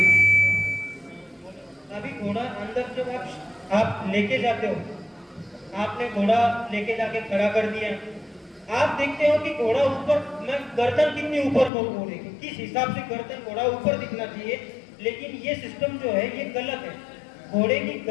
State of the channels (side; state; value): right; drops out; at 11.7 s